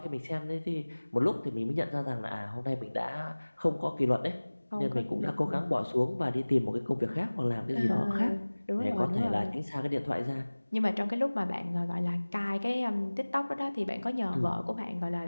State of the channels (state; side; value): inverted; both; correlation -1.00